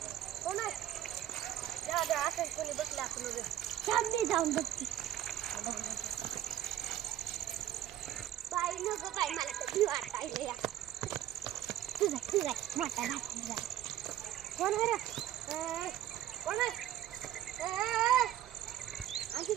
कोण आहे? जा असं कोणी बसला आपण रे. थांब मी जाऊन बघते. बाई नको बाई मला तर भीती वाटायली या. तुझा मोठा भाऊ. कोण आहे रे? कोण आहे? आणखी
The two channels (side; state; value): left; quieter; 12.7 dB